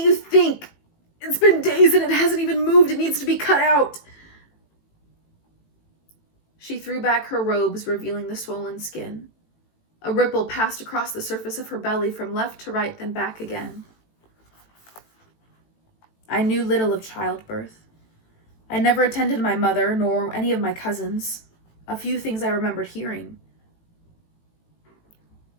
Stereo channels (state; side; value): late; right; 18 ms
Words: think? It's been days and it hasn't even moved. It needs to be cut out. She threw back her robes, revealing the swollen skin. A ripple passed across the surface of her belly from left to right, then back again. I knew little of childbirth. I never attended my mother, nor any of my cousins. A few things I remembered hearing.